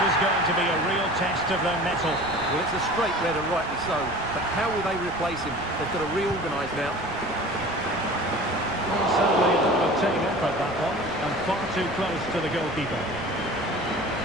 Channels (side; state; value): right; noise; rumble, 17 dB below the sound